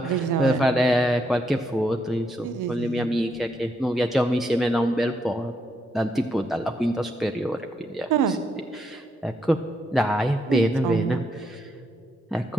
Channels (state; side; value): normal; both; correlation 0.77